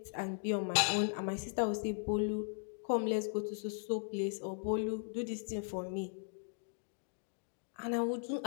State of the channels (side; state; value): right; silent; digital silence